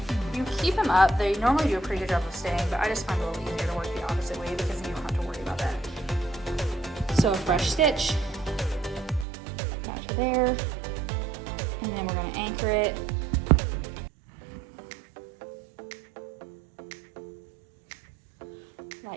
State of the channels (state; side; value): drops out; left; at 9.2 s